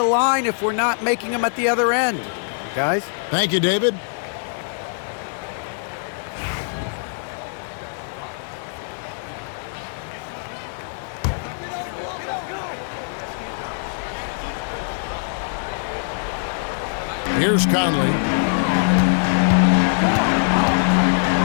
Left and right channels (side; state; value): right; silent; digital silence